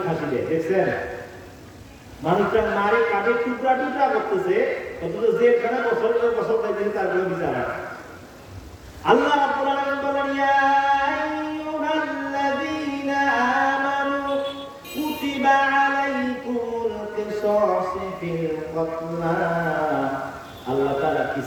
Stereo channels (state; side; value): identical; both; correlation 1.00